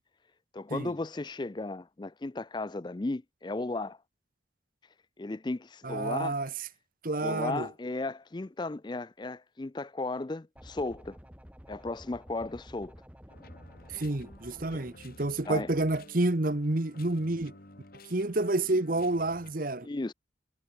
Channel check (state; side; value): normal; both; correlation 0.42